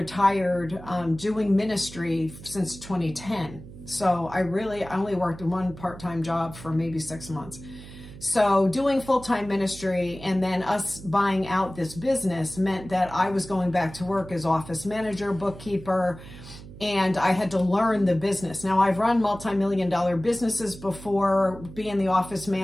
doing ministry since 2010. So I only worked one part-time job for maybe 6 months. So doing full-time ministry and then us buying out this business meant that I was going back to work as office manager, bookkeeper, and I had to learn the business. Now, I've run multi-million-dollar businesses before, being the office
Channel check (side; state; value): right; noise; hum, 16 dB below the sound